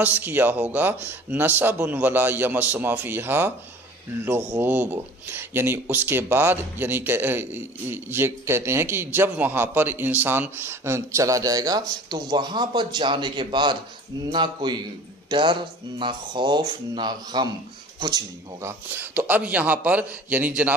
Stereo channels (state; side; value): normal; both; correlation 0.45